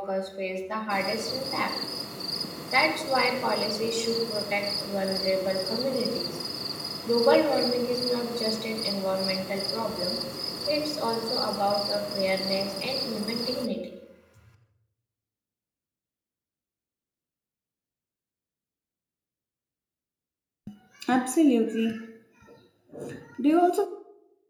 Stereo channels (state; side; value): identical; both; correlation 1.00